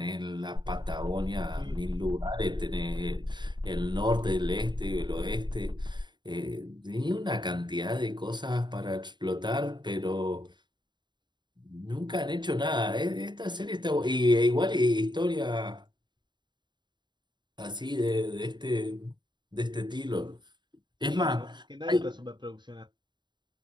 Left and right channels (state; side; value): late; left; 0.22 ms